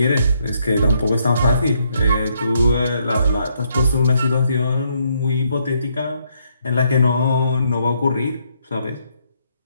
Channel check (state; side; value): inverted; both; correlation -0.73